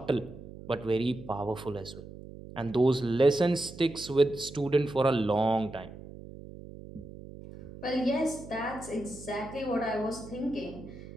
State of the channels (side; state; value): right; noise; hum, 15 dB below the sound